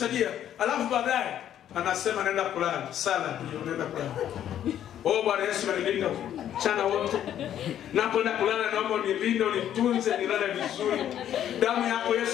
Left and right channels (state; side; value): quieter; right; 10.7 dB